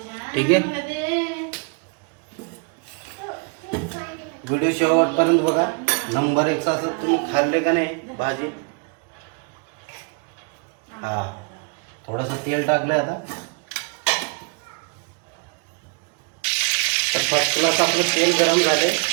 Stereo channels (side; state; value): left; quieter; 36.0 dB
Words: ठीक आहे. व्हिडिओ शेवटपर्यंत बघा. नंबर 1चं असं तुम्ही खाल्ले का नाही भाजी. हा, थोडंसं तेल टाकलं आता. तर फर्स्ट क्लास आपलं तेल गरम झाले.